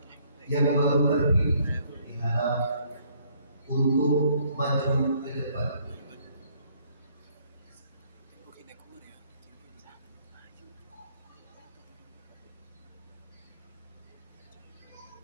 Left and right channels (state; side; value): inverted; both; correlation -0.65